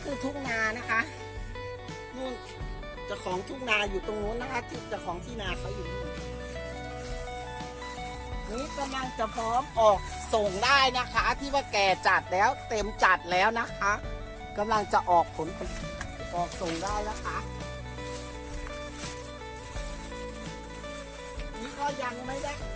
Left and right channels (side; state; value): both; identical; correlation 1.00